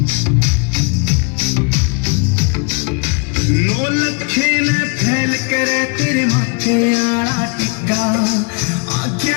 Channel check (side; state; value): right; quieter; 35.4 dB